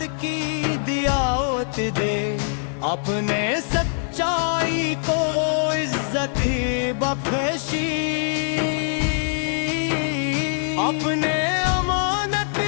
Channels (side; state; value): right; silent; digital silence